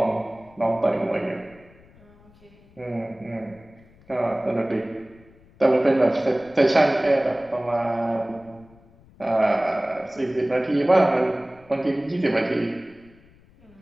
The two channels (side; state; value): left; noise; rumble, 27 dB below the sound